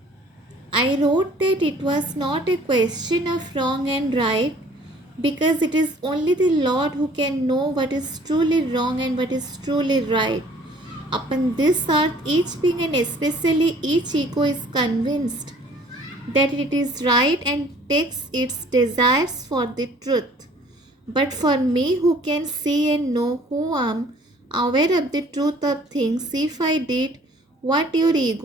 I wrote that it was not a question of wrong and right, because it is only the Lord who can know what is truly wrong and what is truly right. Upon this earth, each being and especially each ego is convinced that it is right and takes its desires for the truth. But for me, who can see and know, who am aware of the truth of things, if I did what your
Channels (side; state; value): both; normal; correlation 0.54